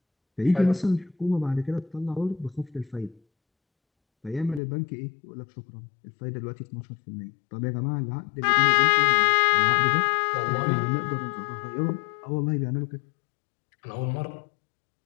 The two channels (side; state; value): right; drops out; at 4.6 s